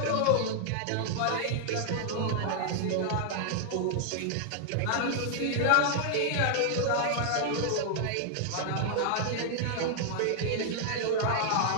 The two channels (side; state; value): both; different; correlation -0.01